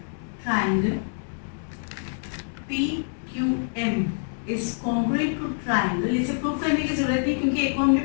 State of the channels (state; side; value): silent; right; digital silence